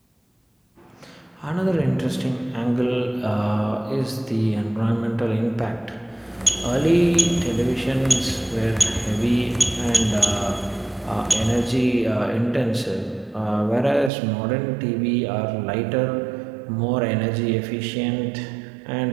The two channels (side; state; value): left; drops out; at 14.1 s